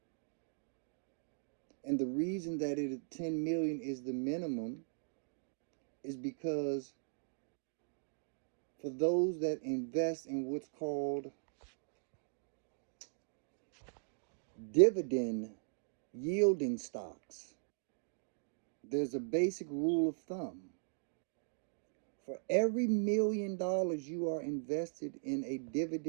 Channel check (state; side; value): silent; left; digital silence